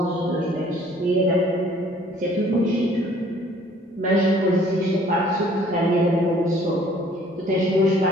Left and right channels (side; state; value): both; normal; correlation 0.57